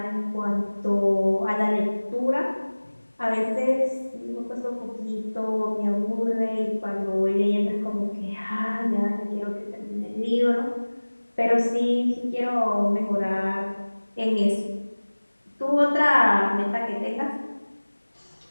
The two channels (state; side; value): inverted; both; correlation -1.00